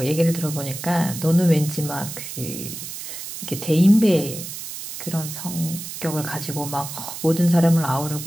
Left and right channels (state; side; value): noise; right; hiss, 9 dB below the sound